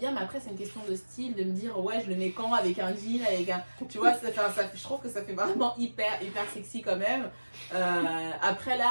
Mais après, c'est une question de style. De me dire, ouais, je le mets quand avec un jean, avec un. Tu vois, je trouve que ça fait vraiment hyper sexy quand même. Après,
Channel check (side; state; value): both; inverted; correlation -1.00